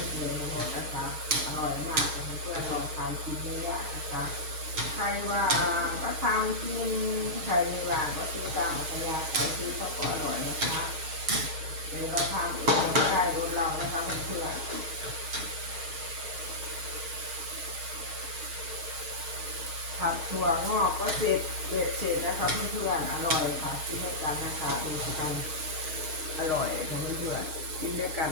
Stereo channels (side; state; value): left; late; 6.4 ms